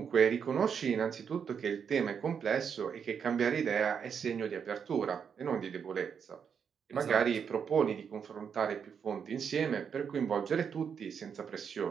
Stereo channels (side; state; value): left; quieter; 7.1 dB